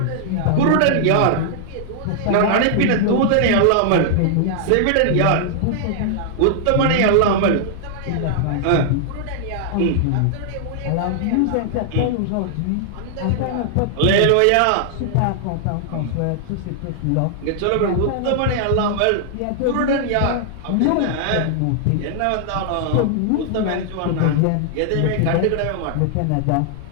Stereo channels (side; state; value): both; different; correlation -0.01